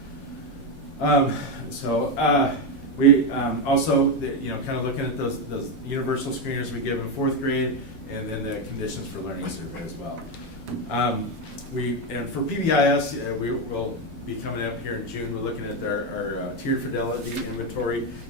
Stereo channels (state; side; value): normal; both; correlation 0.08